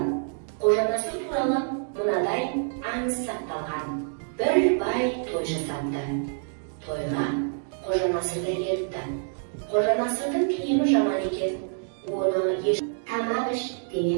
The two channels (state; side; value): silent; left; digital silence